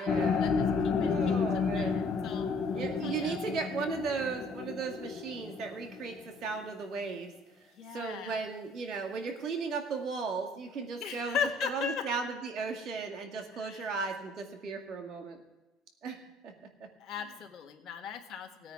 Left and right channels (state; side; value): normal; both; correlation 0.58